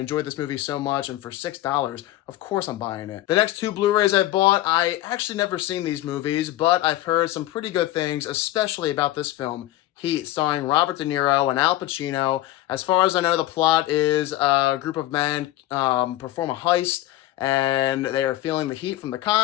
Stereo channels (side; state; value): right; quieter; 15.3 dB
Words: this movie so much, and for $6, of course I'm buying it. The next 2 Blu-rays I bought, I actually never seen these movies, but I've heard some pretty good things, especially about this film, Heat, starring Robert De Niro and Al Pacino. As far as I know, the plot is a group of men perform a heist, and they are feeling the heat from the